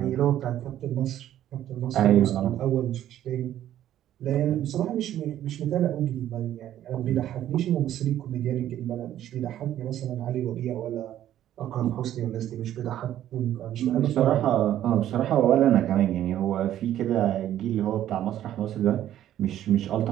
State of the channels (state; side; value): quieter; left; 12.0 dB